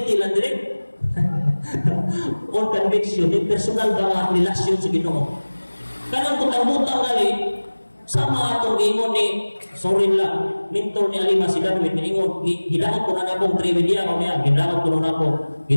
lang direct. On conviction, di personal ba nga relasyon sa Ginoo. Kanang kutang-butang gali, sama atong ingon ni, sorry lang, minto ni Alima si Darwin, ingon, gidakot ko na akong trivia ko niya, gidakot ko na ako,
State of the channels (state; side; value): inverted; both; correlation -1.00